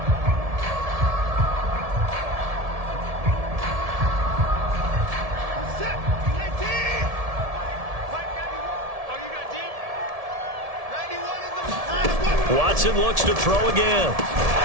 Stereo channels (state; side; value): late; left; 1.7 ms